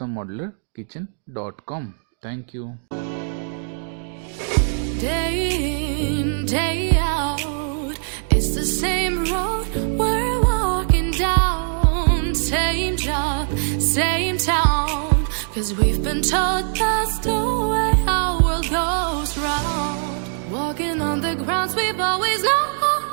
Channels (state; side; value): silent; left; digital silence